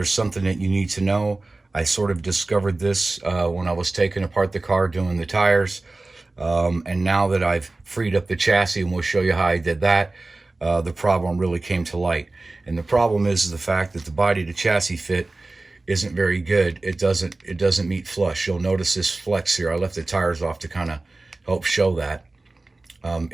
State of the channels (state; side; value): quieter; left; 3.1 dB